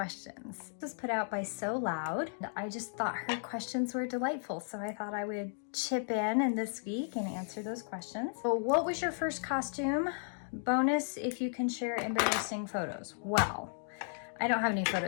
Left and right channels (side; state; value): right; silent; digital silence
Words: This was put out by So Loud. I just thought her questions were delightful, so I thought I would chip in this week and answer those questions. So what was your first costume? Bonus if you can share embarrassing photos. Well, I don't have any